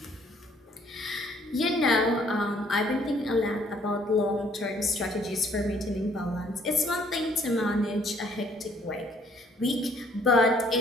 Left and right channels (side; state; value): both; normal; correlation 0.63